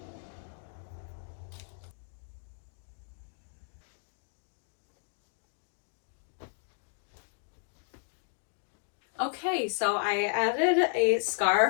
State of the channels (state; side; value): silent; right; digital silence